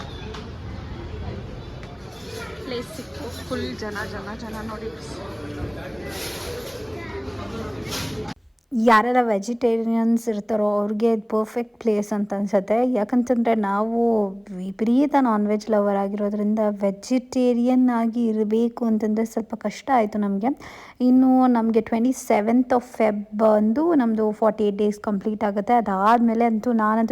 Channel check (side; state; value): both; identical; correlation 1.00